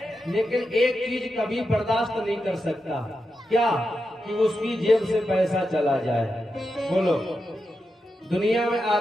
लेकिन एक चीज कभी बर्दाश्त नहीं कर सकता। क्या? कि उसकी जेब से पैसा चला जाए। बोलो, दुनिया में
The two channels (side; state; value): both; normal; correlation 0.88